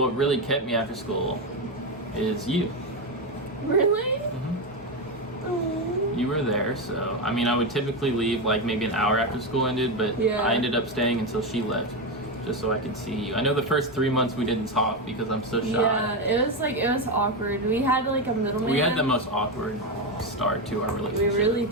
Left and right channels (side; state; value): both; normal; correlation 0.11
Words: really kept me after school is you. Really? You were there, so I would typically leave like maybe an hour after school ended, but I ended up staying until she left, just so I could see you. I know the first 3 months we didn't talk because I'm so shy. Yeah, it was awkward. We had like a middleman. We had the most awkward start to our We relationship. really